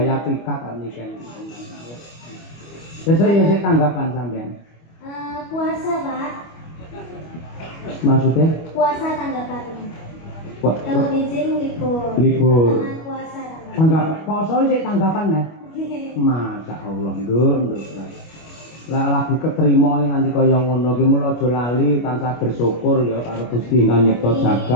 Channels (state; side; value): late; right; 25 ms